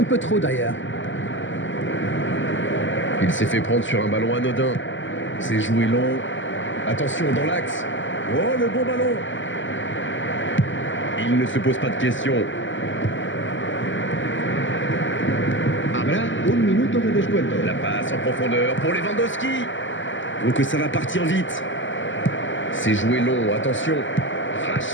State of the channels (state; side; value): late; right; 0.55 ms